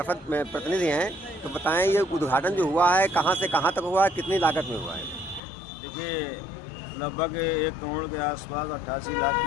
में प्रतिनिधि हैं, तो बताएं ये उद्घाटन जो हुआ है कहाँ से कहाँ तक हुआ है, कितनी लागत में हुआ है? देखिए, लगभग 1 करोड़ के आसपास 88 लाख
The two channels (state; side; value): drops out; right; at 5.4 s